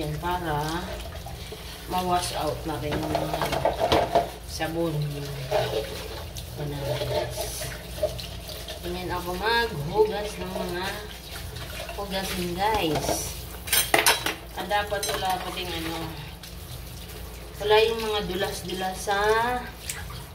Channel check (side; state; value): both; identical; correlation 1.00